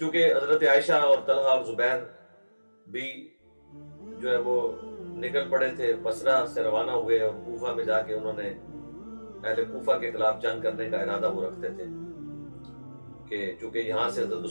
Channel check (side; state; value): both; inverted; correlation -1.00